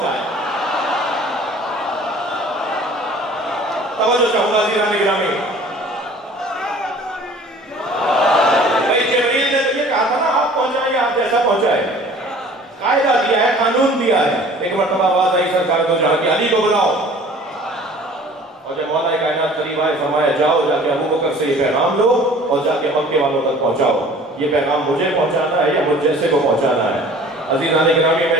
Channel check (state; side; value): normal; both; correlation 0.48